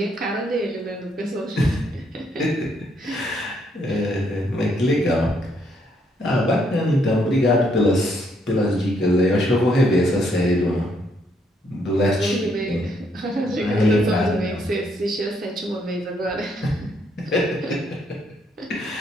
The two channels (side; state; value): both; normal; correlation 0.72